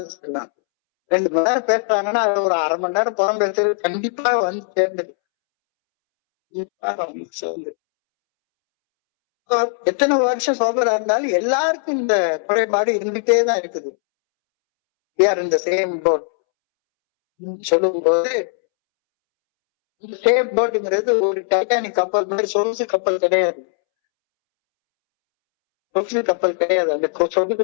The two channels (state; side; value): silent; right; 66 dB below the other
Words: 2 மணி நேரம் பேசுறாங்கன்னா அது ஒரு அரை மணி நேரம் புறம் பேசுறது கண்டிப்பா வந்து சேர்ந்துது. எத்தனை வருஷம் சோபரா இருந்தாலும் எல்லாருக்கும் இந்த குறைபாடு இருந்துட்டே தான் இருக்குது. இந்த சேம் போட் சொல்லும் போது இந்த சேம் போட்டுங்கிறது ஒரு டைட்டானிக் கப்பல் மாதிரி சொகுசு கப்பல் கிடையாது. அந்த சொகுசு